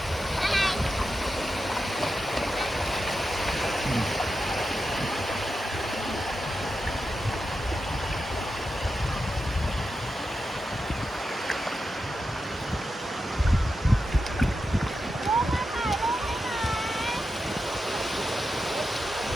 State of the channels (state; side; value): normal; both; correlation 0.89